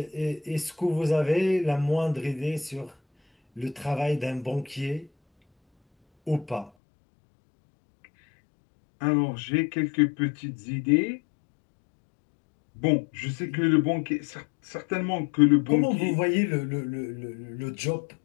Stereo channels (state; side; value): drops out; right; at 6.7 s